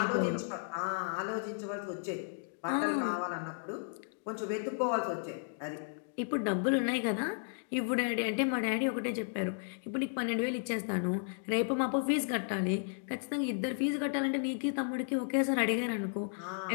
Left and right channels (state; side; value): silent; right; digital silence